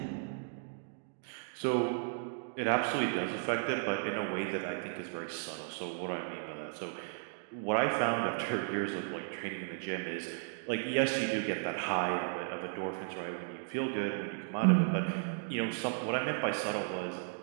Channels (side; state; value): left; silent; digital silence